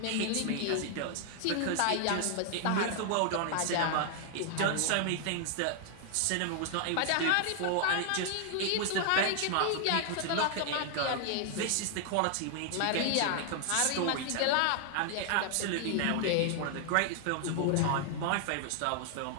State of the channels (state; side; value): different; both; correlation 0.00